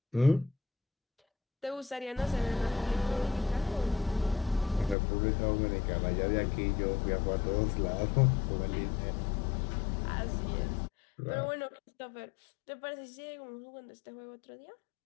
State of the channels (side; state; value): right; drops out; at 5.0 s